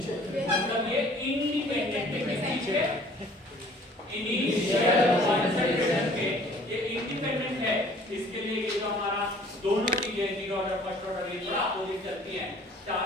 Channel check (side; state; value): both; normal; correlation 0.53